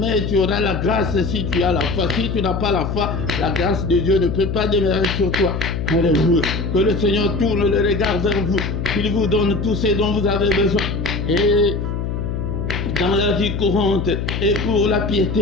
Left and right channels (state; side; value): noise; left; hum, 3 dB below the sound